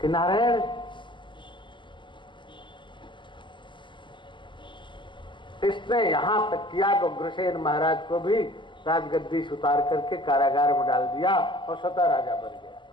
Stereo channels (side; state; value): right; late; 0.23 ms